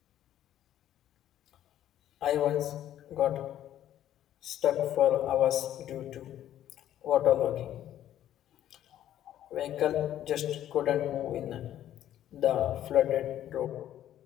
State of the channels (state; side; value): quieter; right; 11.8 dB